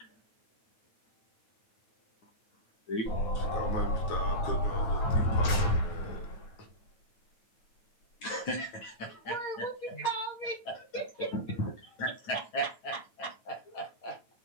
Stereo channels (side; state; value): right; late; 9.2 ms